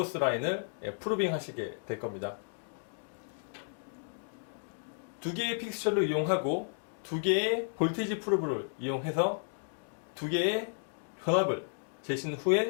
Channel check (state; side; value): silent; right; digital silence